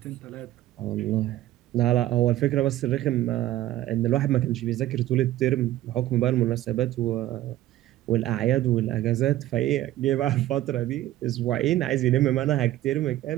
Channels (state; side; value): quieter; left; 14.6 dB